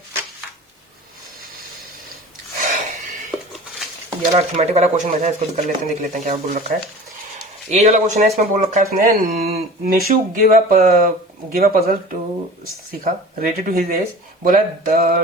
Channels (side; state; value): both; normal; correlation 0.39